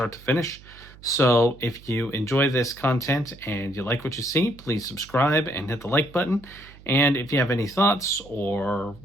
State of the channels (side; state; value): right; noise; hum, 21 dB below the sound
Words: to finish. So if you enjoy this content and you like what you see, please subscribe and hit the like button. And if you have any thoughts or